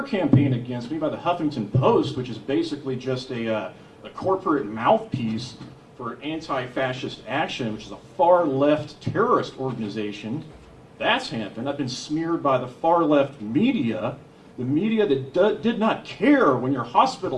campaign against me by the Huffington Post, which is basically just a corporate mouthpiece for anti-fascist action, which is a far-left terrorist organization. That's happened. I've been smeared by the far-left media, the media that did not care when your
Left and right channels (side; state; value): both; identical; correlation 1.00